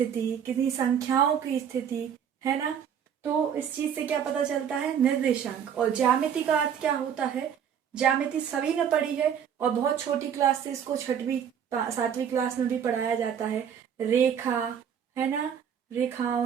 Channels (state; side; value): quieter; left; 8.3 dB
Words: किसी संख्याओं की स्थिति, है ना। तो इस चीज से क्या पता चलता है? निर्देशांक। और ज्यामिति का अर्थ क्या होता है? ज्यामिति सभी ने पढ़ी है और बहुत छोटी क्लास से इसको 6वीं 7वीं क्लास में भी पढ़ाया जाता है। रेखा, है ना, रेखाओं